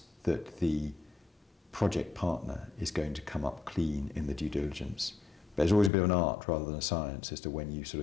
that the project partner is going to come up clean in the due diligence. But there's always a bit of an art rather than a science as to when you sort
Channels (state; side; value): drops out; right; at 5.9 s